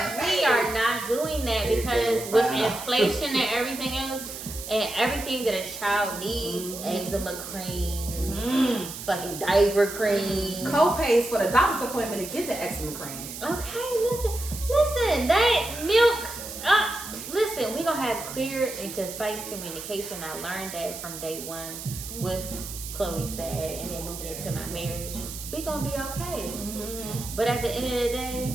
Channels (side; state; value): right; noise; hiss, 10 dB below the sound